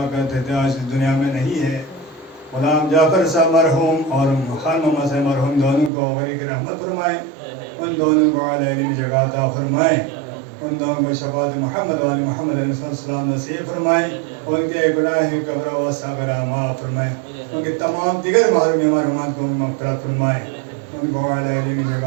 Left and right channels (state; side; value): drops out; left; at 5.9 s